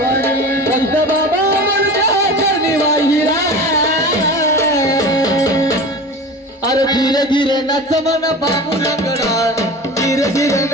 संत बाबा म्हणता चरणी वाहिरा अरे धीरे धीरे नच मन बाबू लंगडा धीरे धीरे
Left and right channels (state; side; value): normal; both; correlation 0.33